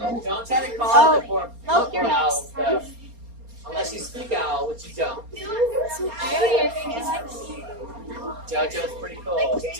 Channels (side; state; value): left; late; 4.3 ms